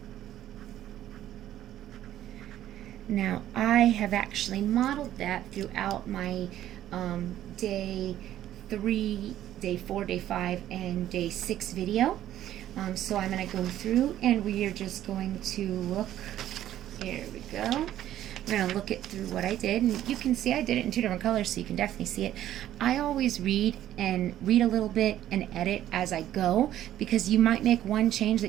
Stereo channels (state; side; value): quieter; left; 12.4 dB